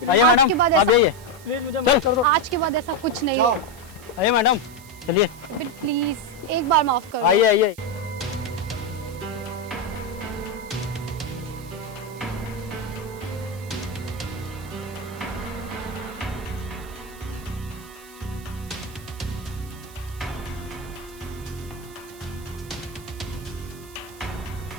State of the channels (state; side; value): noise; right; hiss, 20 dB below the sound